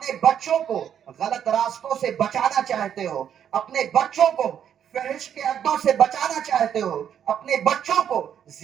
بچوں کو غلط راستوں سے بچانا چاہتے ہو، اپنے بچوں کو فحش کے اڈوں سے بچانا چاہتے ہو، اپنے بچوں کو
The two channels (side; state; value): left; quieter; 9.1 dB